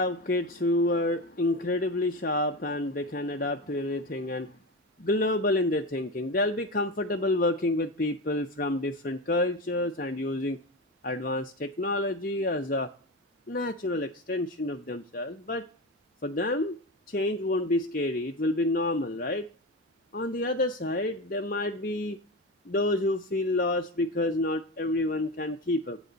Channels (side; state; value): both; normal; correlation 0.22